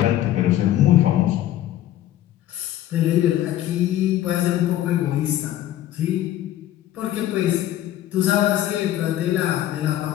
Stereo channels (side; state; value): right; quieter; 12.9 dB